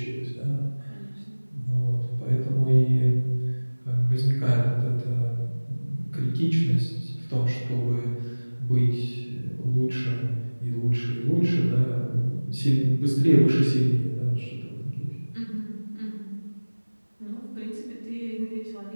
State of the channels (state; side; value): inverted; both; correlation -1.00